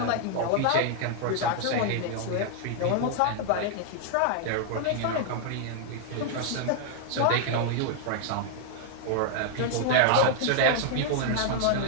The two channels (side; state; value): both; different; correlation 0.00